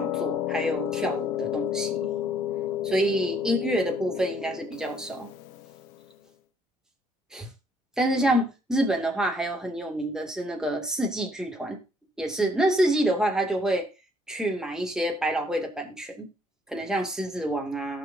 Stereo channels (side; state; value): both; normal; correlation 0.65